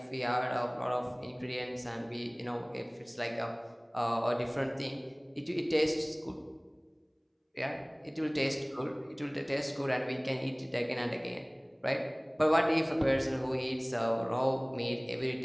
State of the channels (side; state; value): both; identical; correlation 1.00